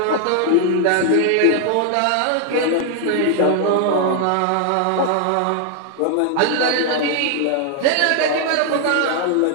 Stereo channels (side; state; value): both; different; correlation 0.00